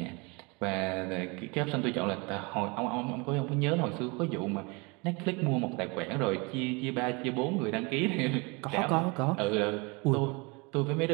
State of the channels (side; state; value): left; quieter; 28.2 dB